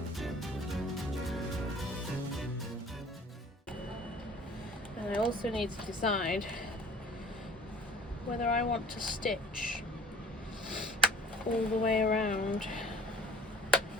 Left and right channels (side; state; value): both; normal; correlation 0.50